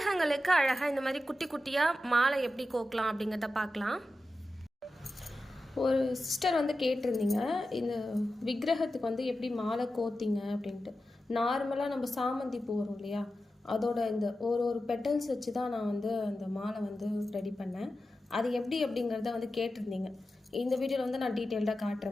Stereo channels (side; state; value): both; normal; correlation 0.92